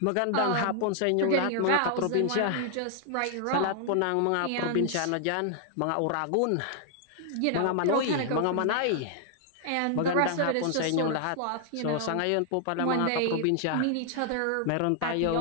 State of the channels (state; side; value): different; both; correlation 0.00